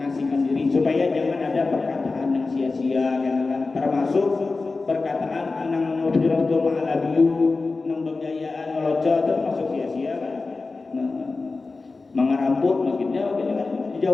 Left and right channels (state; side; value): quieter; right; 3.8 dB